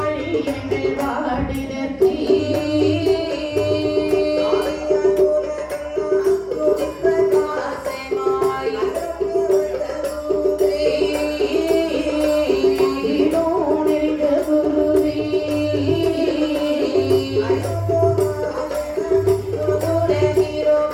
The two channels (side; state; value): both; identical; correlation 1.00